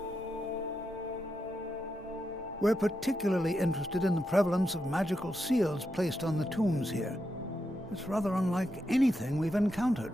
We're particularly interested in the prevalence of magical seals placed on the tombs here. It's rather unlike anything we've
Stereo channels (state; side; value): normal; both; correlation 0.85